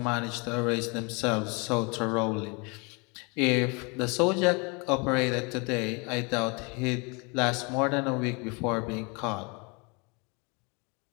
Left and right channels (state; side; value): quieter; right; 30.6 dB